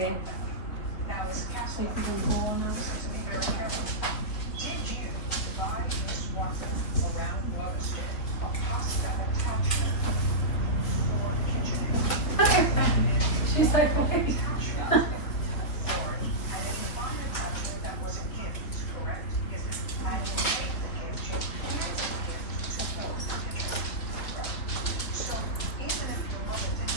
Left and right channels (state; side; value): late; right; 3.8 ms